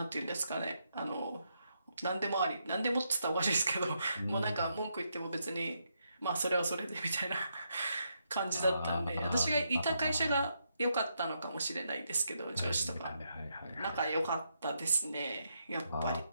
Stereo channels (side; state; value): both; inverted; correlation -0.80